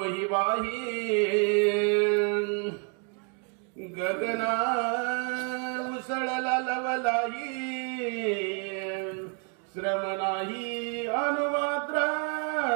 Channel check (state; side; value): quieter; left; 39.0 dB